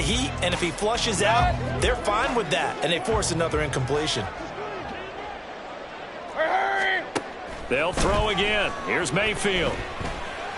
and if he flushes out, they're fine with that, and they force another incompletion. They'll throw again. Here's Mayfield.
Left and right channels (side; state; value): both; identical; correlation 1.00